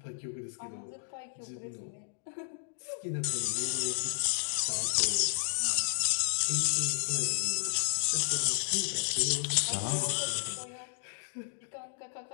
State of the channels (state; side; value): silent; right; digital silence